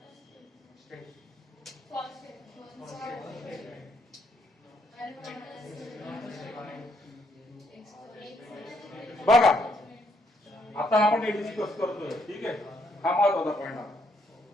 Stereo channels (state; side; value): normal; both; correlation 0.73